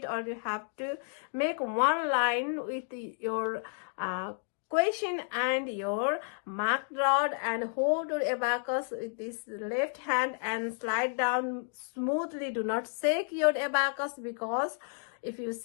or you have to make one line with your question and your marked rod, and hold your abacus with this left hand and slide down smoothly. Do not shake your abacus, because if you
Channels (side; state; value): right; silent; 57 dB below the other